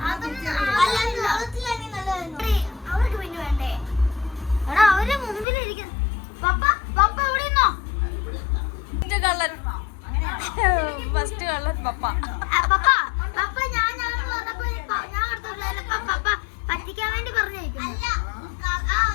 അവർക്ക് പിന്നെ വേണ്ടേ എടാ അവരുടെ മുമ്പിലിരിക്കുന്നു. പപ്പ പപ്പ എവിടെ നിന്നോ കള്ളൻ ഫസ്റ്റ് കള്ളൻ പപ്പ പപ്പ പപ്പ ഞാൻ പറഞ്ഞപ്പോ ഞാൻ അടുത്തുള്ള പപ്പ പറ്റിക്കാൻ വേണ്ടി പറഞ്ഞേക്കും.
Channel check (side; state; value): right; drops out; at 5.5 s